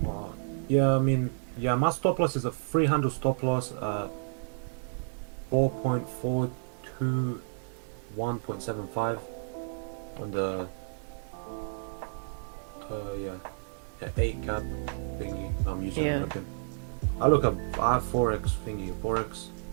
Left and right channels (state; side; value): silent; left; 57 dB below the other